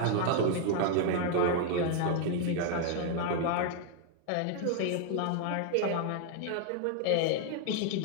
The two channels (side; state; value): both; different; correlation 0.00